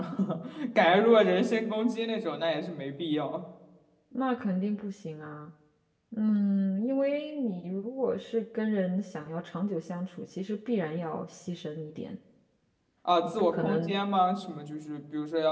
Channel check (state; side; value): identical; both; correlation 1.00